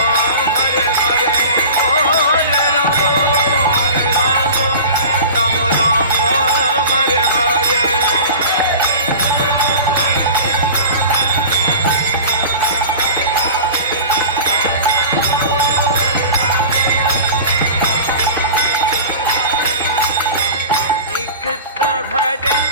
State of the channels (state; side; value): inverted; both; correlation -0.37